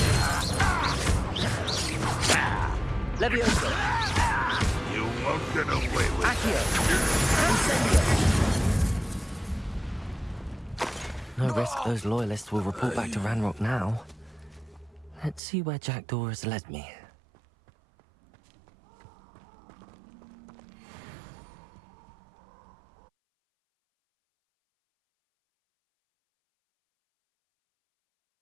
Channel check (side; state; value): left; drops out; at 15.4 s